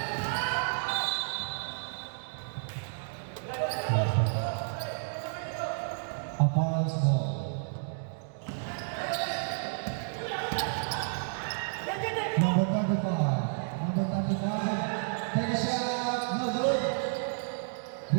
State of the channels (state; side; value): silent; left; digital silence